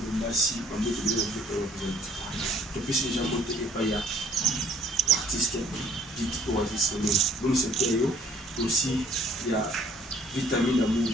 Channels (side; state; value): both; normal; correlation 0.59